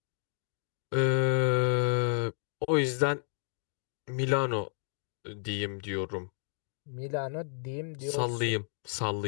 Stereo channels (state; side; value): silent; right; digital silence